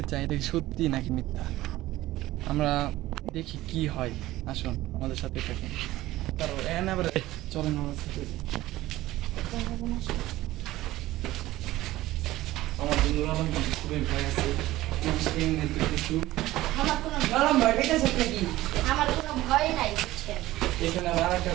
চাই এটা কি সত্যি নাকি মিথ্যা। আমরা দেখি কি হয়। আসুন আমাদের সাথে থাকুন। তারপর চলেন আমার সাথে। আমার বন্ধুরা খুবই ভয় আছে। কিছু আমার কোনো ভয় নাই বুঝছেন। এখানে আমার একটা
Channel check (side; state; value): left; quieter; 16.5 dB